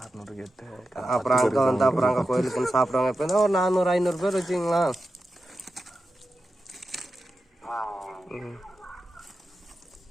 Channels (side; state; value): both; normal; correlation 0.91